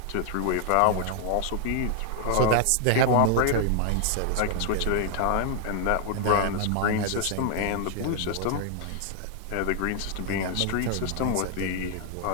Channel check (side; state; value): both; different; correlation 0.00